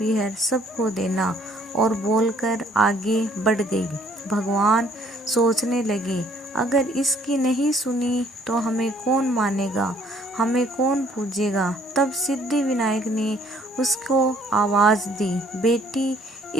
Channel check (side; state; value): both; normal; correlation 0.61